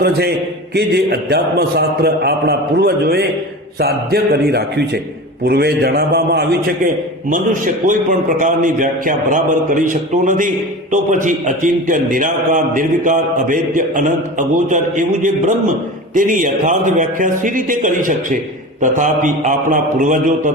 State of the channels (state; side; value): normal; both; correlation 0.31